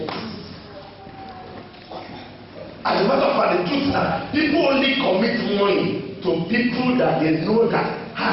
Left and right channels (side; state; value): both; identical; correlation 1.00